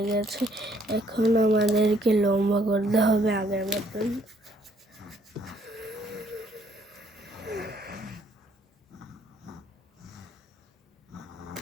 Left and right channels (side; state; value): both; normal; correlation 0.66